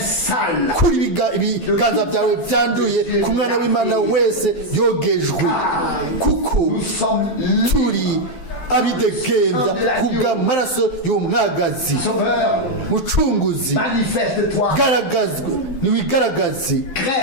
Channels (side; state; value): right; late; 12 ms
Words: kuri ibiganza byawe byanduye ku mwana w'imana wese yogejwe, kuko nous sommes libres. turi abidegembya kubw'amaraso y'umwagazi. Sauveur, Mucunguzi, manifeste-toi, garagazwe niwigaragaze,